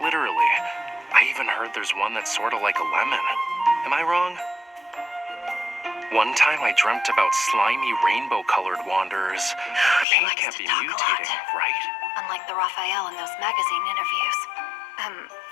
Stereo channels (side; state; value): right; drops out; at 10.1 s